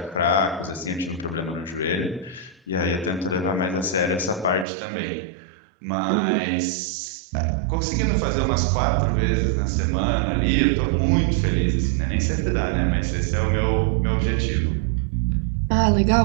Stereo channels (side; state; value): left; drops out; at 4.7 s